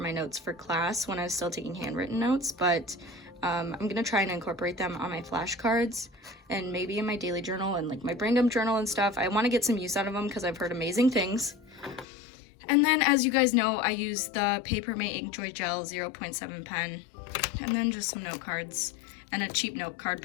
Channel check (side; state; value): right; drops out; at 12.1 s